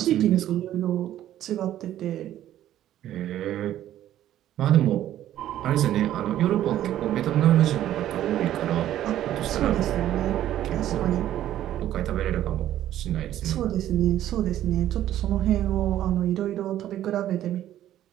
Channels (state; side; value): quieter; left; 12.4 dB